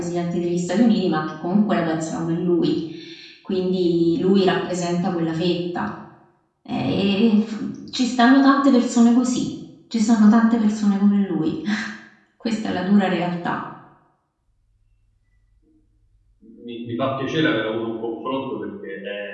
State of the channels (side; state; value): both; identical; correlation 1.00